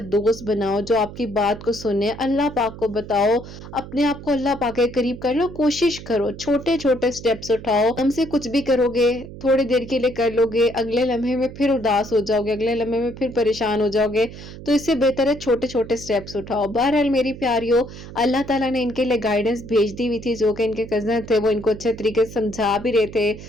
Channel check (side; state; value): right; noise; hum, 14 dB below the sound